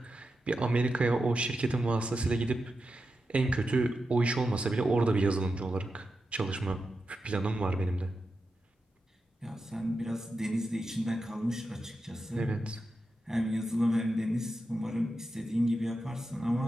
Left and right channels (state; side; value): normal; both; correlation 0.89